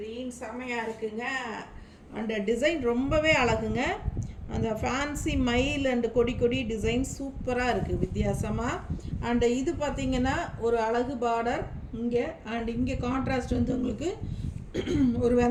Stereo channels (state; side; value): identical; both; correlation 1.00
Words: செமையாக இருக்குங்க. அந்த டிசைன் ரொம்பவே அழகுங்க. அந்த ஃபேன்சி மயில் அண்ட் கொடி கொடி டிசைன் சூப்பராக இருக்குது வித்தியாசமாக. அண்ட் இது பார்த்திங்கன்னா ஒரு அழகு பார்டர் இங்கே. அண்ட் இங்கே கான்ட்ராஸ்ட் வந்து உங்களுக்கு ஒரு